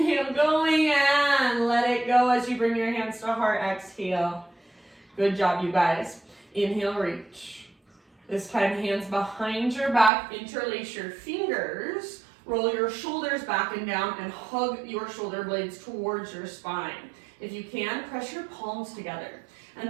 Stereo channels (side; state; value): left; drops out; at 10.1 s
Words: going and let it go as you bring your hands to heart. Exhale. Good job, you guys. Inhale, reach. This time, hands behind your back. Interlace your fingers. Roll your shoulders back and down and hug your shoulder blades towards your spine. If you can, press your palms together.